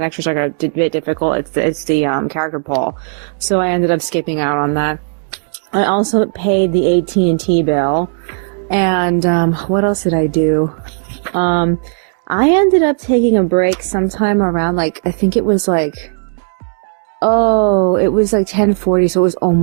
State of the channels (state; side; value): silent; left; digital silence